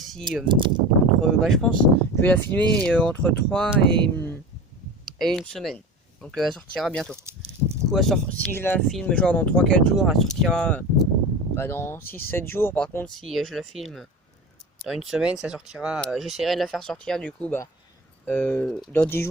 je pense je vais la filmer entre 3 et une semaine. Donc elle sortira bientôt. Du coup si je la filme genre dans 3-4 jours, elle sortira dans 6-7 jours. Par contre si je la filme dans une semaine, ça sortira. J'essaierai de la faire sortir du coup dans 10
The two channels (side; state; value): both; normal; correlation 0.31